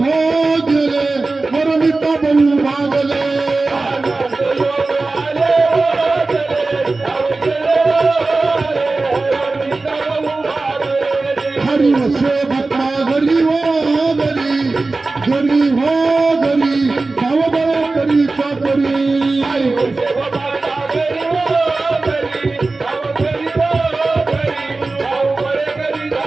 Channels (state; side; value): quieter; left; 3.5 dB